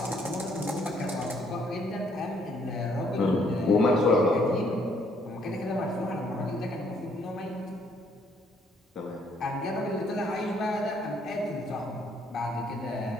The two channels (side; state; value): both; normal; correlation 0.67